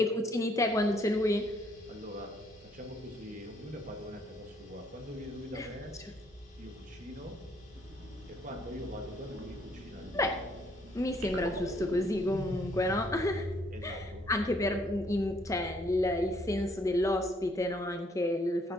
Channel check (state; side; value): normal; both; correlation 0.67